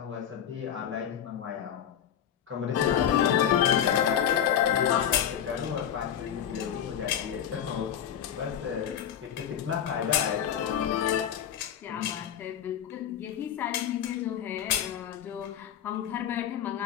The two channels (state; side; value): quieter; right; 9.4 dB